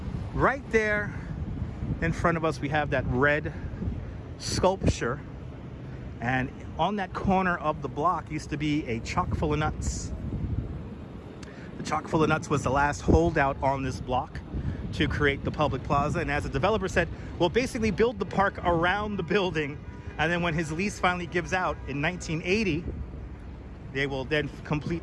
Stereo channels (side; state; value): both; identical; correlation 1.00